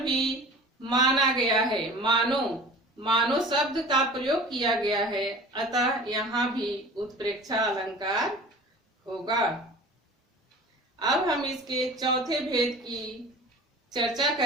माना गया है, मानो शब्द का प्रयोग किया गया है, अतः यहाँ भी उत्प्रेक्षा अलंकार होगा। अब हम इसके चौथे भेद की चर्चा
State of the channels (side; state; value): both; normal; correlation 0.41